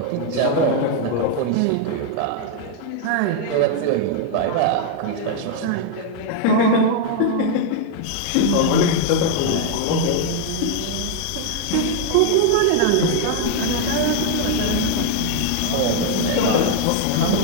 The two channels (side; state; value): both; different; correlation 0.00